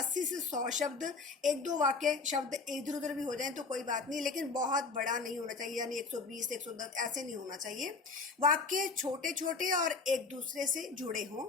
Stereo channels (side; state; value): right; quieter; 4.2 dB